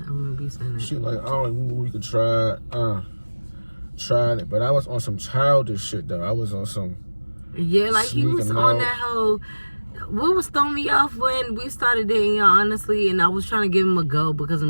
I remember you saying that. she like, oh, we could try it. Tried it, but I was on some childish shit though. I was on some. Yeah, like he was on that whole. What was throwing me off when we started dating, y'all, honestly, and I was trying to give him a go because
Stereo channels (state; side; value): inverted; both; correlation -1.00